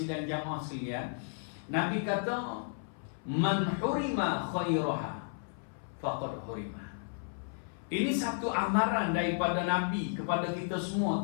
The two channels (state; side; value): silent; right; 56 dB below the other